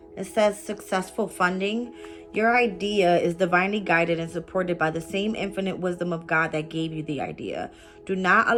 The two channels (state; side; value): identical; both; correlation 1.00